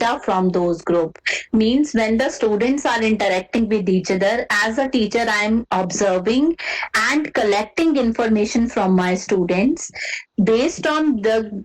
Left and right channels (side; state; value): both; identical; correlation 1.00